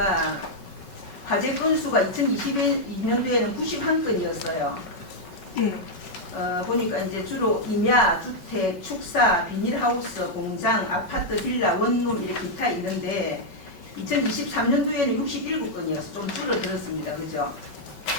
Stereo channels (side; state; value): right; late; 5.3 ms